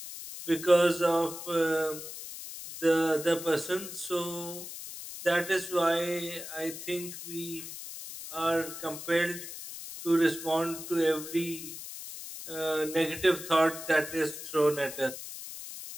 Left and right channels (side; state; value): left; noise; hiss, 10 dB below the sound